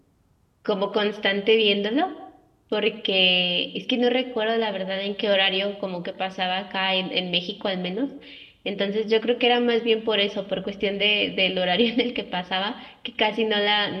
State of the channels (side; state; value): both; identical; correlation 1.00